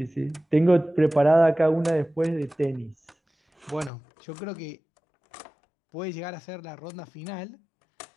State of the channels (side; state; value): right; drops out; at 3.9 s